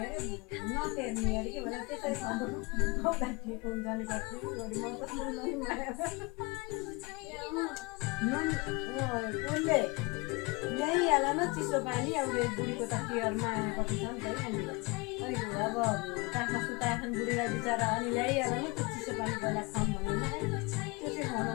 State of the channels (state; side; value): quieter; right; 26.7 dB